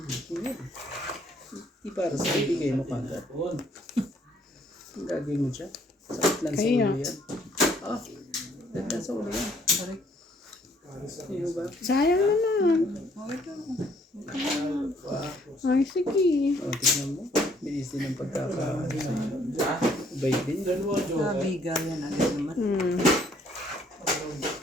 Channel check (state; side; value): normal; both; correlation 0.64